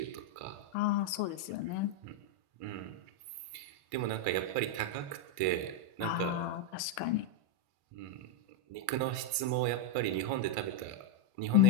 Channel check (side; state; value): left; late; 1.5 ms